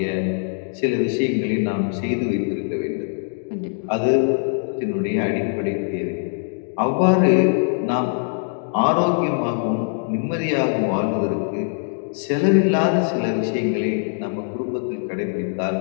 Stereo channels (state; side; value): silent; right; 57 dB below the other